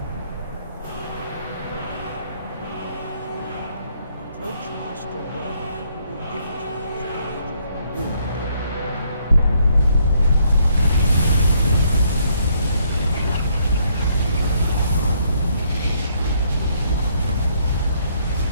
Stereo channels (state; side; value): inverted; both; correlation -0.69